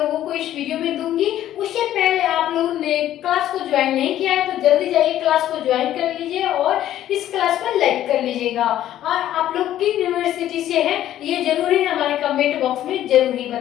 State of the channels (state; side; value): quieter; right; 12.4 dB